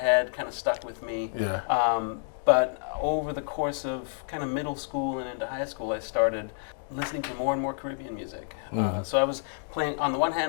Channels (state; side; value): silent; right; digital silence